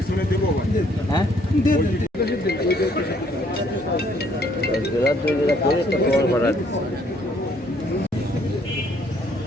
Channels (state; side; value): normal; both; correlation 0.65